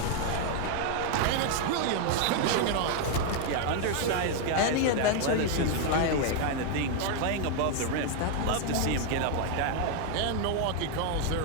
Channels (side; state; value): both; different; correlation 0.01